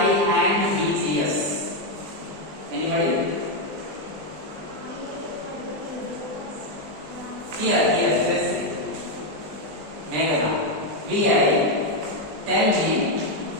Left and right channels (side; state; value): left; late; 20 ms